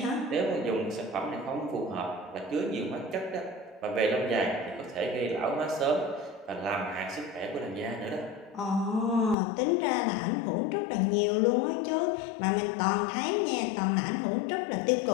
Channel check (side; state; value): right; drops out; at 9.3 s